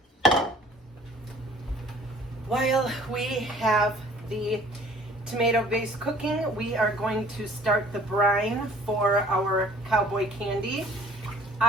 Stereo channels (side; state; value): both; normal; correlation 0.51